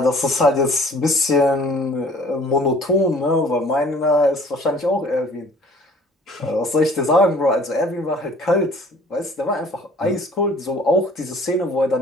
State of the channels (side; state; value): both; normal; correlation 0.52